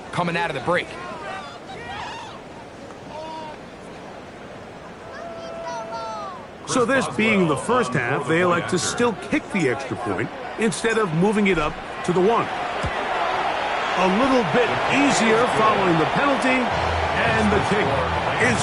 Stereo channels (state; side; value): identical; both; correlation 1.00